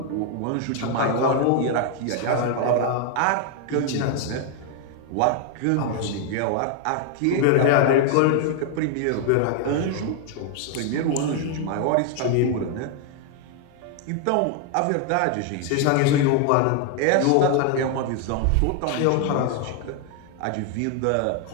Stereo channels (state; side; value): different; both; correlation 0.00